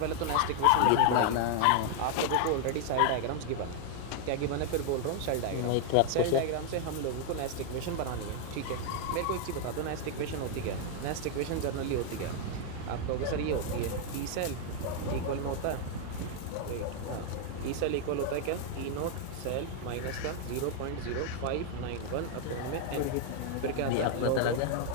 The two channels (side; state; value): both; different; correlation 0.00